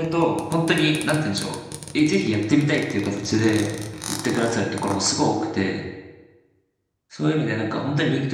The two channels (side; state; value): both; identical; correlation 1.00